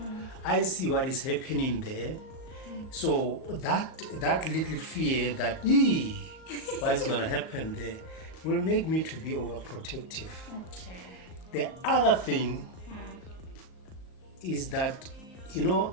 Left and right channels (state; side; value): late; right; 38 ms